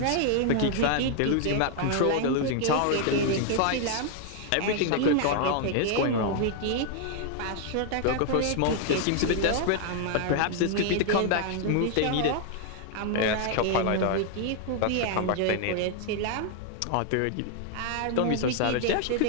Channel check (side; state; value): both; different; correlation 0.00